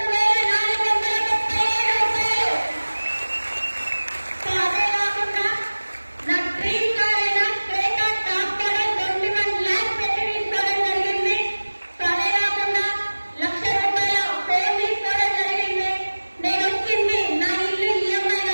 రూపాయలు. సో అదే కాకుండా నా డ్రీమ్ కార్ అయిన క్రేటా టాప్ మోడల్ 21 lakhs పెట్టి తీసుకోవడం జరిగింది. సో అదే కాకుండా 1,00,000 రూపాయల ఫోన్ తీసుకోవడం జరిగింది. నేను వచ్చింది నా ఇల్లు ఈఎంఐ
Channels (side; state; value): both; inverted; correlation -1.00